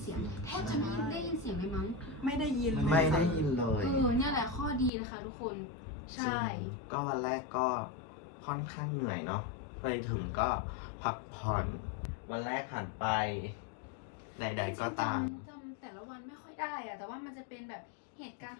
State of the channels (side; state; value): right; drops out; at 4.9 s